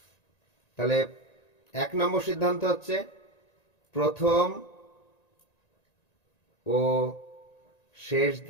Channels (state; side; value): late; right; 1.9 ms